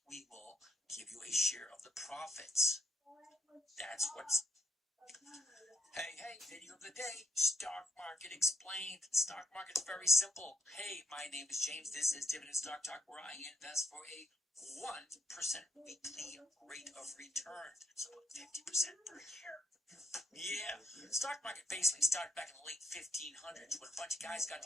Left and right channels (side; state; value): both; normal; correlation 0.75